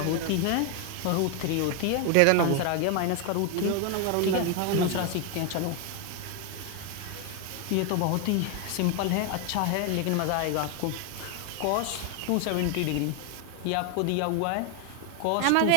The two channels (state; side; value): different; both; correlation 0.01